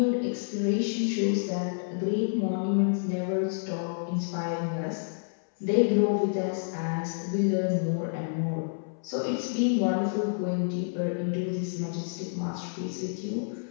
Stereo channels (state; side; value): silent; right; 59 dB below the other